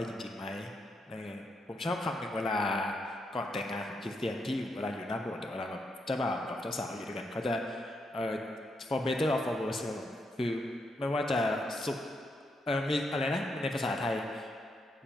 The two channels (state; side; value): normal; both; correlation 0.80